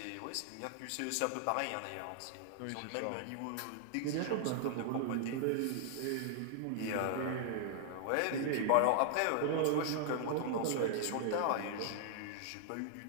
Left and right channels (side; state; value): both; different; correlation -0.01